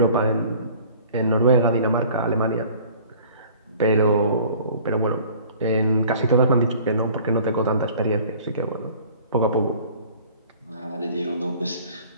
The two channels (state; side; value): inverted; both; correlation -0.49